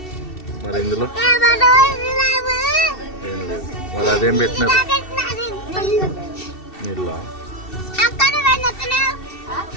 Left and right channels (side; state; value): right; late; 2.7 ms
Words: మరి ఇందులో ఏం లేదు. మరి అదేం పెట్టినారు? నీళ్ళ